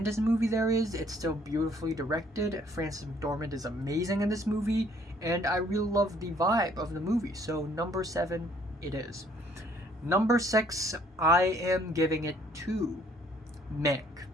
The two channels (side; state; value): both; normal; correlation 0.62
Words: movie there is. It's still beautifully directed. Frances McDormand is amazing in this movie, and I really love the vibe of the movie. So number 7, it is. Number 6, I am giving it to Mank.